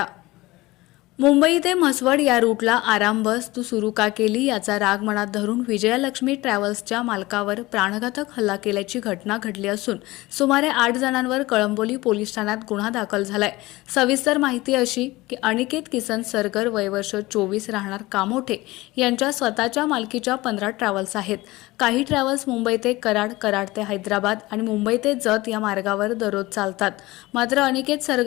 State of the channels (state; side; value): quieter; right; 19.9 dB